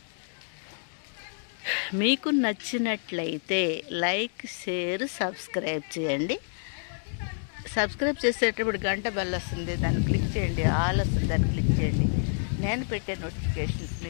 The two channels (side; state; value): right; silent; digital silence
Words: మీకు నచ్చినట్లయితే లైక్, షేర్, సబ్స్క్రైబ్ చేయండి. సబ్స్క్రైబ్ చేసేటప్పుడు గంట బెల్ వస్తుంది, దాన్ని క్లిక్ చేయండి. ఆల్ వస్తుంది, దాన్ని క్లిక్ చేయండి. నేను పెట్టే నోటిఫికేషన్స్